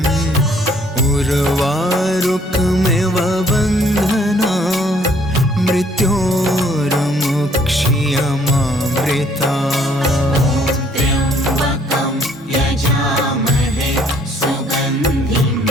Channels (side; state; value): both; normal; correlation 0.62